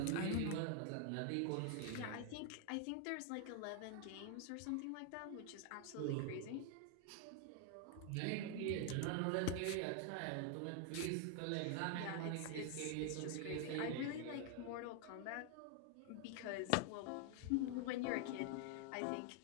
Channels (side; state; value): both; different; correlation 0.00